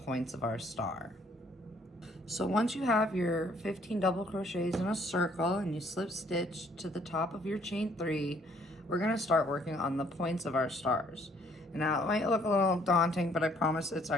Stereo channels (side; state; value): both; normal; correlation 0.63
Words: of our star. So once you have your 15 double crochets in a circle and you slip stitch to the top of your chain 3, we're going to start working on the points of our stars. Now, it might look a little daunting, but I promise it's